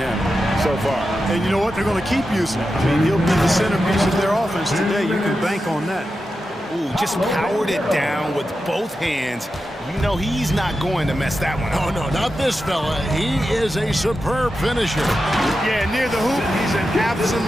so far. And you know what? They're going to keep using him. I mean, he'll be the centerpiece of their offense today. You can bank on that. Ooh, just powered it down with both hands. You know he's not going to mess that one up. Oh, no, not this fella. He is a superb finisher. Yeah, near the hoop, he's an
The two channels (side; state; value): both; normal; correlation 0.90